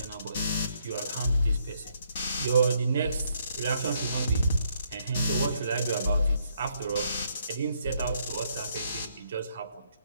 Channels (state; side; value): inverted; both; correlation -0.72